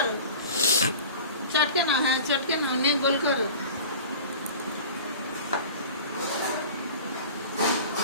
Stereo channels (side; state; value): both; inverted; correlation -0.39